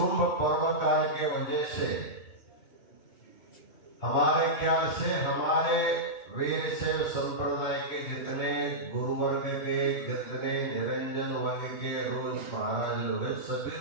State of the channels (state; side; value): late; right; 2.6 ms